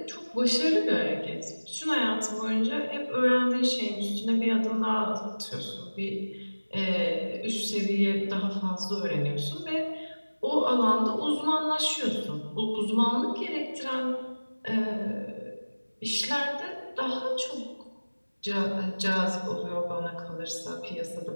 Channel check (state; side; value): inverted; both; correlation -1.00